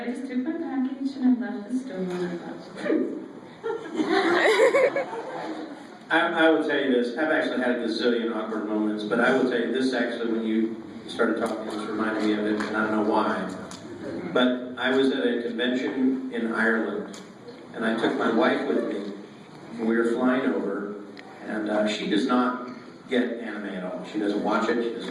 just took my package, and I left the store, and I will tell you this. I've actually had a gazillion awkward moments, but I will tell you this actually when you started talking, this reminded me of it, and I don't know why. But I was at a convention in Ireland, and I took my wife with me, and we were flying over, and she does not get anime at all. She doesn't watch it, she doesn't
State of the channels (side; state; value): both; identical; correlation 1.00